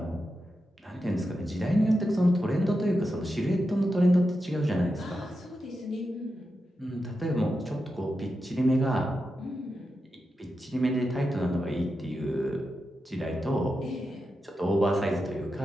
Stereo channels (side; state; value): both; normal; correlation 0.89